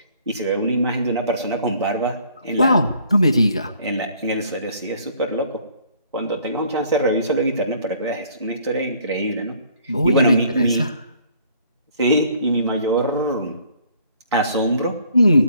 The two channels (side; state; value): both; inverted; correlation -0.60